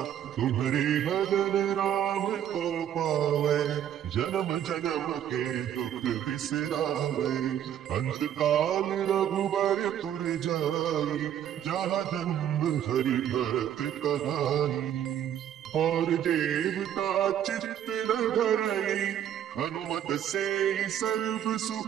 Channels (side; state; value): left; quieter; 10.3 dB